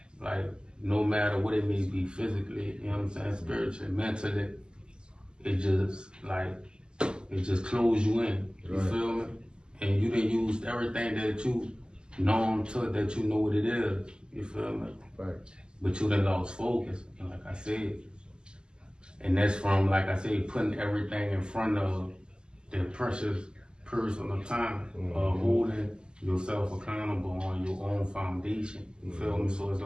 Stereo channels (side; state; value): left; late; 0.047 ms